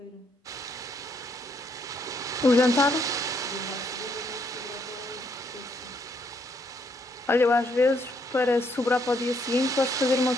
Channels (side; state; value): both; normal; correlation 0.72